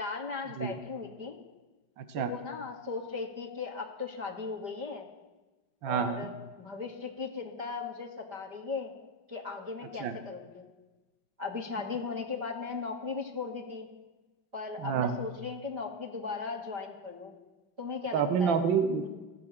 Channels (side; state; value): left; late; 5.1 ms